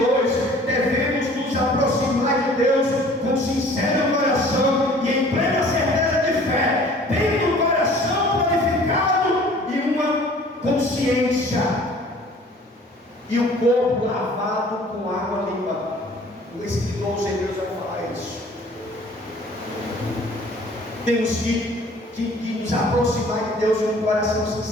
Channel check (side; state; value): both; normal; correlation 0.50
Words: devemos nos aproximar de Deus com sincero coração e em plena certeza de fé, tendo o coração purificado e uma consciência, e o corpo lavado com água limpa. O escritor aos Hebreus vai falar isso. Temos que nos aproximar de Deus com um coração